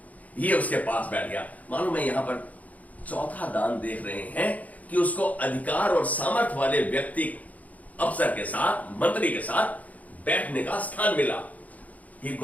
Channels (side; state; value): right; late; 0.074 ms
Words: ये उसके पास बैठ गया। मालूम है, यहां पर चौथा दान देख रहे हैं कि उसको अधिकार और सामर्थ वाले व्यक्ति, अफसर के साथ, मंत्री के साथ बैठने का स्थान मिला। He